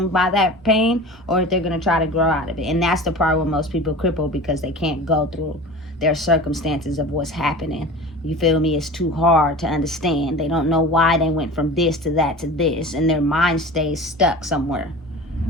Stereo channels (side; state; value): both; normal; correlation 0.36